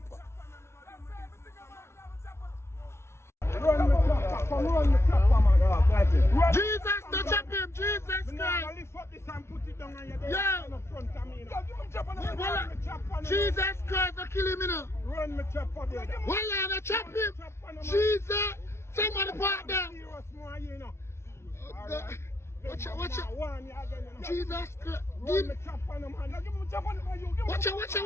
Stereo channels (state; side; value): late; right; 0.13 ms